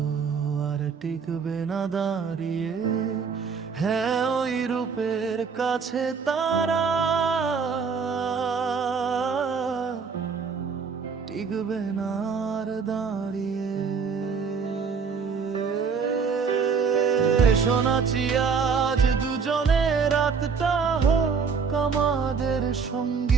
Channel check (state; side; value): quieter; left; 5.7 dB